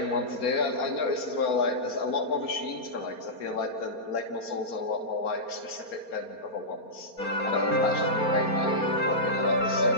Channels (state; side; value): late; right; 4.3 ms